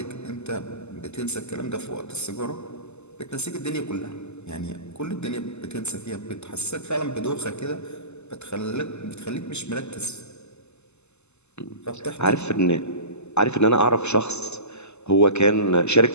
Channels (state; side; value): late; right; 0.81 ms